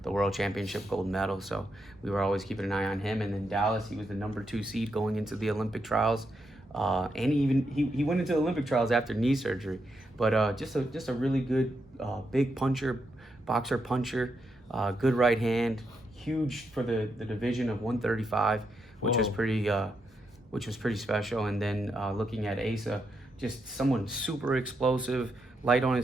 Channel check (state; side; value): normal; both; correlation 0.82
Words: World Championship gold medal. So we were always keeping an eye on him. And then Dallas, he was the number 2 seed going into the Olympic trials. And he went into the Olympic trials after knee surgery. But just a really good big boxer puncher, good right hand, huge for the division of 135, which was pretty special. And then looking at Asa, just someone super explosive, light on